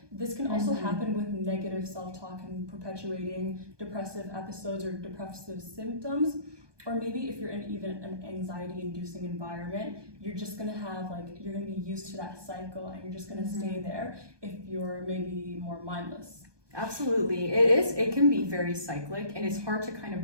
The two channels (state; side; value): late; left; 1.2 ms